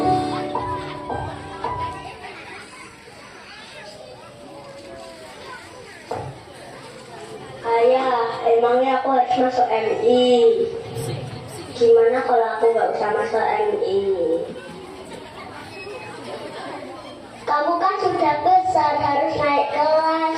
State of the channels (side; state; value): both; identical; correlation 1.00